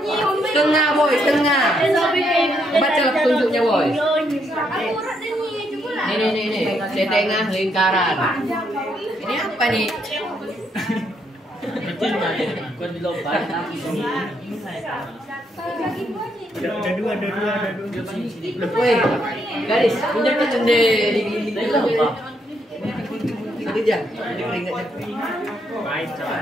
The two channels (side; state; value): both; normal; correlation 0.75